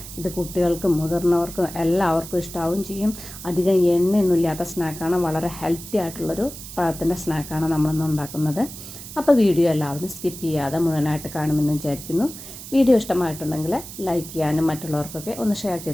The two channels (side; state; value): right; noise; hiss, 13 dB below the sound